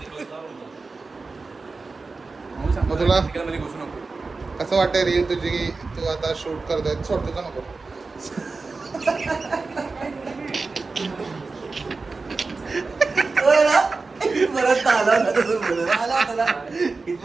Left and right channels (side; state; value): left; quieter; 4.0 dB